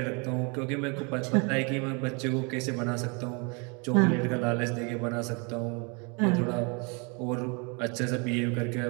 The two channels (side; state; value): left; quieter; 33.2 dB